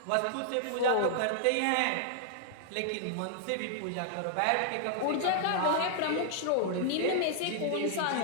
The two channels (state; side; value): different; both; correlation -0.01